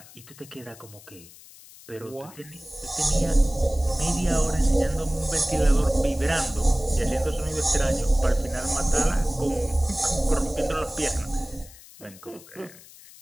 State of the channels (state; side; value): noise; left; hiss, 21 dB below the sound